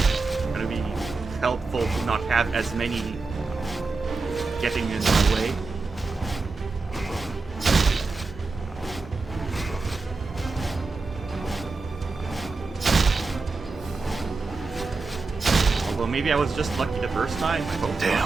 gonna be helpful to not have as many getting in my way. Although maybe I was just lucky the first time, I hope.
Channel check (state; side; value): quieter; left; 4.0 dB